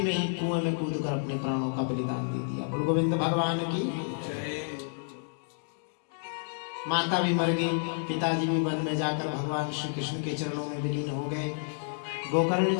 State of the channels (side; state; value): right; silent; digital silence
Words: में ही कुएं में कूदकर अपने प्राणों का बलिदान दे दिया। बोलो गोविंद भगवान की जय। माता भी मर गई, पिताजी भी वन में जाकर भगवान श्री कृष्ण के चरणों में विलीन हो गए। गोकर्ण